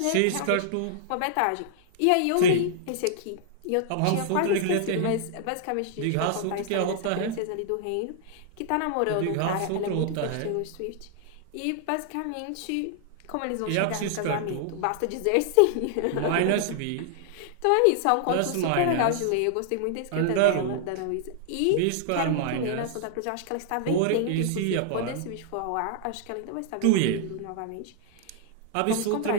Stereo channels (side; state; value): both; different; correlation -0.01